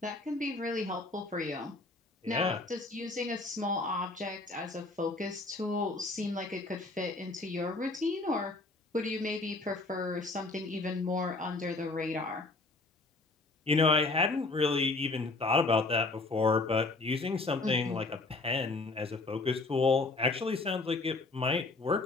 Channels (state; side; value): quieter; right; 3.3 dB